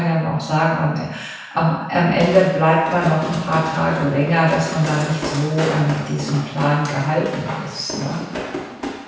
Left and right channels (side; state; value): both; identical; correlation 1.00